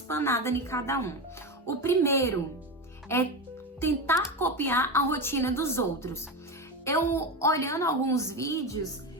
em cada um. O primeiro é tentar copiar a rotina dos outros. Eu, olhando alguns vídeos,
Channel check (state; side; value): normal; both; correlation 0.18